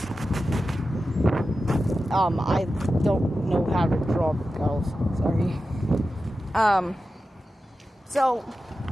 I don't know how to draw girls, sorry. So,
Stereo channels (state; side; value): normal; both; correlation 0.92